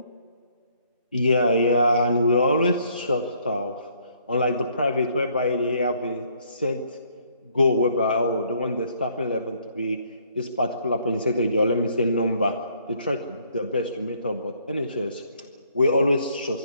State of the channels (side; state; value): both; inverted; correlation -0.65